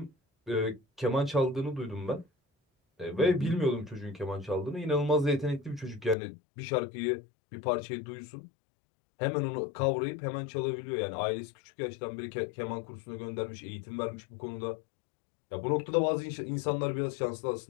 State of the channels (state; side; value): drops out; right; at 6.2 s